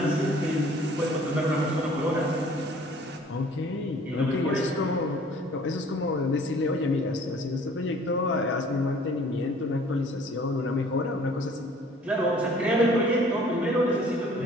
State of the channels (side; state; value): both; normal; correlation 0.53